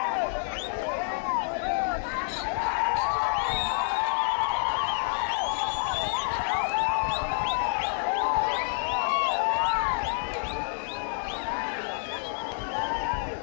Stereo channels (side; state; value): right; silent; 59 dB below the other